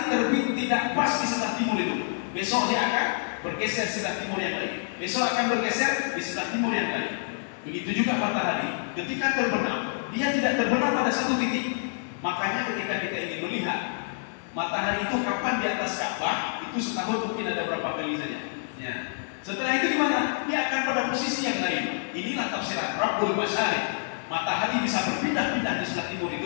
terbit tidak pas di sebelah timur itu. Besok dia akan bergeser sebelah timur yang lain. Besok akan bergeser di sebelah timur yang lain. Begitu juga matahari ketika terbenam, dia tidak terbenam pada satu titik. Makanya ketika kita ingin melihat matahari itu kapan di atas Ka'bah, itu setahun mungkin ada berapa kali saja. Ya. Setelah itu di mana? Dia akan pada posisi yang lain. Inilah tafsiran Rabbul Masyriq. Matahari bisa berpindah-pindah di sebelah timur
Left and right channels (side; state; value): right; silent; digital silence